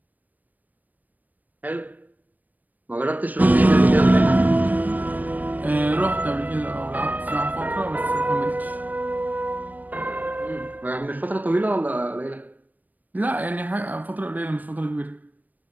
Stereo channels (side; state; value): left; late; 0.082 ms